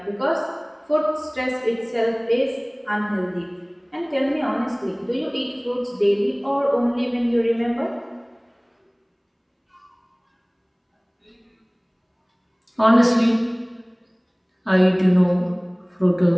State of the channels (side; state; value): both; identical; correlation 1.00